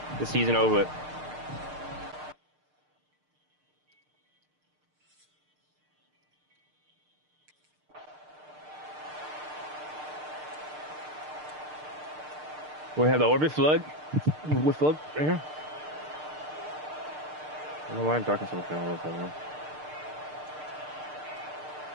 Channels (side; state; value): left; late; 6.6 ms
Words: The season over with. We have the orbit flood. With flood right here. I don't know why I'm talking so much all of that now.